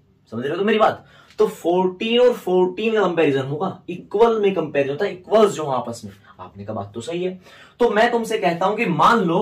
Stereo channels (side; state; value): both; identical; correlation 1.00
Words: समझ रहे हो तो मेरी बात? तो 14 और 14 का कंपैरिजन होगा, इक्वल में कंपैरिजन होता है, इक्वल्स जो आपस में। आपने कहा बात तो सही है। तो मैं तुमसे कहता हूं कि मान